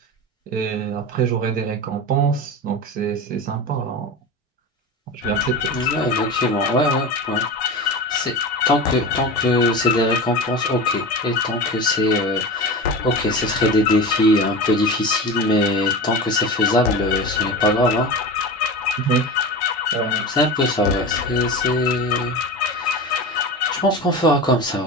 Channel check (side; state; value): both; normal; correlation 0.28